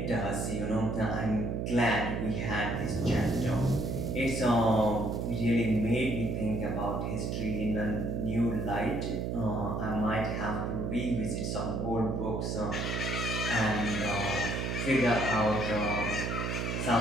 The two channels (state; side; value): noise; right; hum, 1 dB below the sound